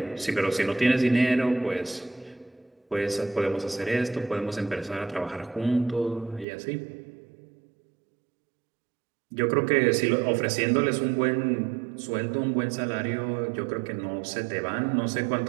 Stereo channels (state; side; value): drops out; left; at 6.5 s